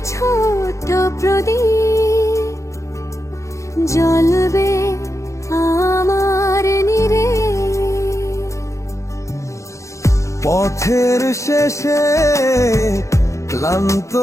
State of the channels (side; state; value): right; late; 0.15 ms